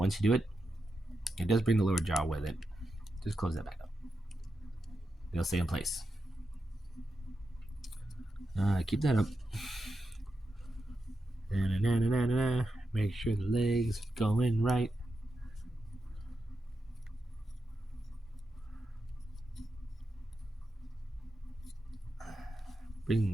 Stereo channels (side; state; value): both; normal; correlation 0.88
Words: you do it, it does bring the lower jaw with it. Just close that back up. They'll stay in place. Keep that up. Make sure the legs go in right.